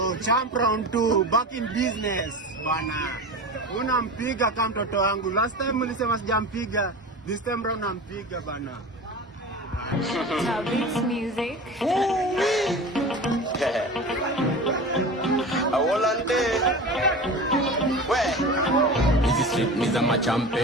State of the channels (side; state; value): both; normal; correlation 0.32